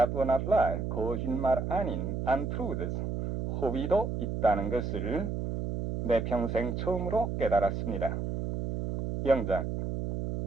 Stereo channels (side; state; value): right; noise; hum, 3 dB below the sound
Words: were not lie, 거짓말 아닌 untruths, 호비도 있다는 것을 내 평생 처음으로 깨달았습니다. 영장.